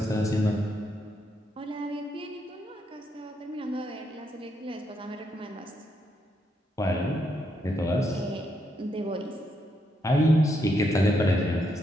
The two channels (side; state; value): both; normal; correlation 0.78